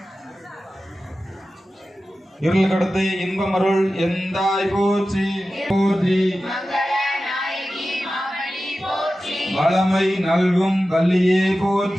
இருள் கடத்து இன்பம் அருள் எந்தாய் போற்றி போற்றி வளமை நல்கும் வள்ளியே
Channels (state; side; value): normal; both; correlation 0.94